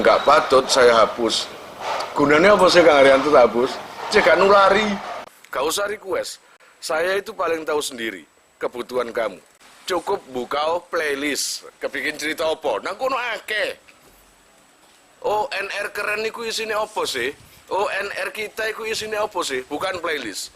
gak patut saya hapus. Gunanya apa sih Kang Arianto tak hapus? Cek gak nulari. Gak usah request. Saya itu paling tahu sendiri kebutuhan kamu. Cukup buka playlist, kepingin cerita apa? Nang kono akeh. ONR keren niku isine apa sih? ONR kita iku isine apa sih? Bukan playlist.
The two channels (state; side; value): identical; both; correlation 1.00